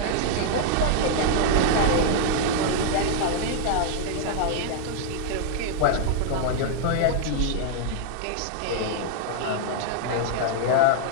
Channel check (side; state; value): both; different; correlation -0.01